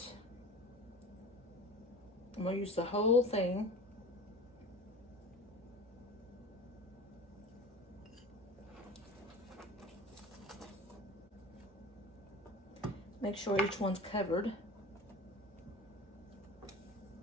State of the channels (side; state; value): both; normal; correlation 0.37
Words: I'm going to use the whole thing. Make sure each one's covered.